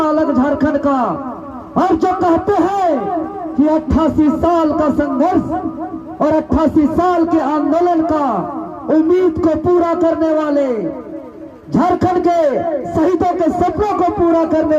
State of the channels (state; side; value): identical; both; correlation 1.00